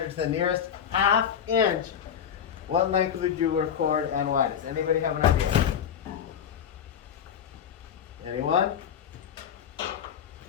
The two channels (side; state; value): right; quieter; 8.4 dB